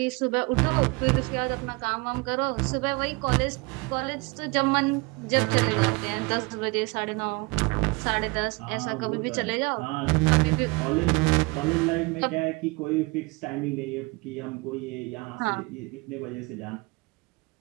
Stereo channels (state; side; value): quieter; left; 27.1 dB